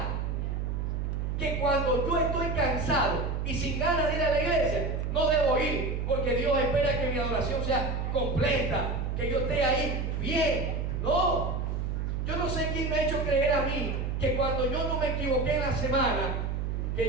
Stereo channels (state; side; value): noise; right; hum, 1 dB below the sound